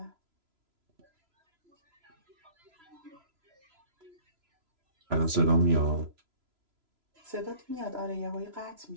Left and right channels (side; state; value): left; late; 3.0 ms